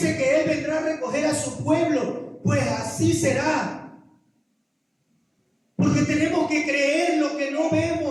que Él vendrá a recoger a su pueblo. Pues así será. Porque tenemos que creer lo que no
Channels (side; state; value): both; identical; correlation 1.00